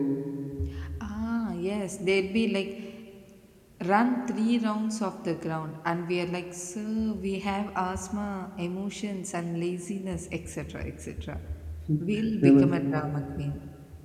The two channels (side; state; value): both; identical; correlation 1.00